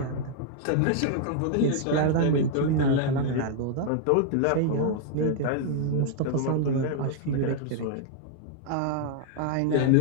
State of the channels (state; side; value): different; both; correlation 0.00